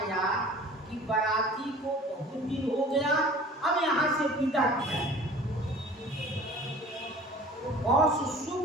कि बाराती को बहुत दिन हो गया, अब यहाँ से विदा किया। और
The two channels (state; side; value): normal; both; correlation 0.45